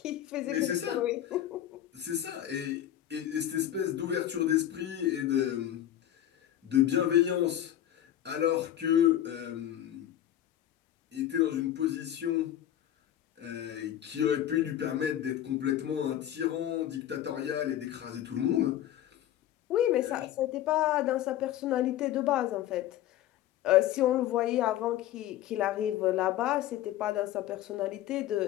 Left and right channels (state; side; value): quieter; right; 12.0 dB